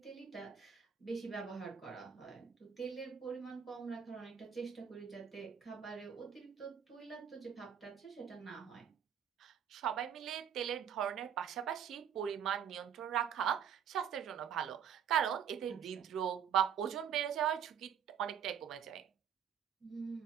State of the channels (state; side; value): quieter; left; 8.4 dB